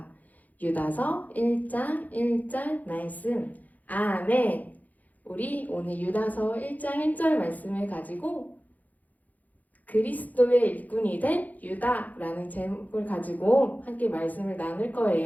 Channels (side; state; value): right; late; 0.079 ms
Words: 유다서 1장 1절 말씀. 아멘. 우리 오늘 유다서 1장 1절 말씀을 가지고 그리스도의 일꾼이 된 유다라는 제목을 가지고 함께 말씀을 나눌